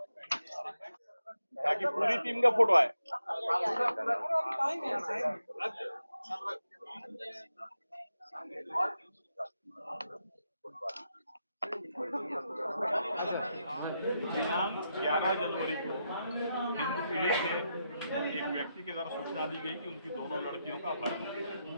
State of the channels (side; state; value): both; inverted; correlation -0.84